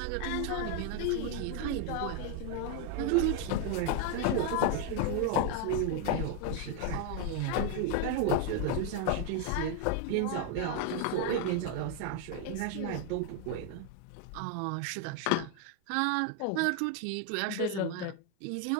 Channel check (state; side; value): different; both; correlation 0.01